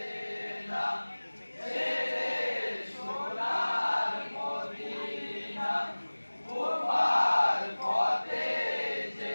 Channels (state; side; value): inverted; both; correlation -1.00